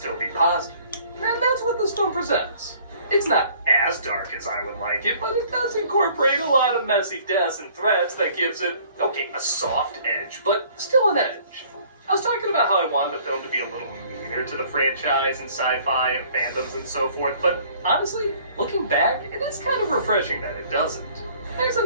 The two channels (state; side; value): inverted; both; correlation -0.56